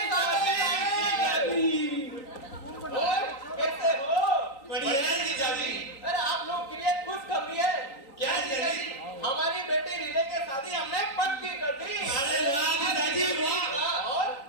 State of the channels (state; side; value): late; right; 3.8 ms